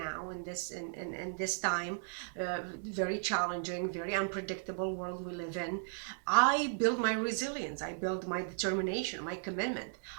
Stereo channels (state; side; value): silent; left; digital silence